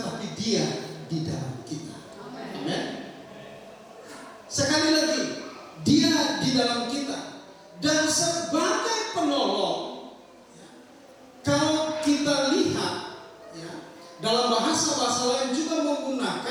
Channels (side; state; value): both; identical; correlation 1.00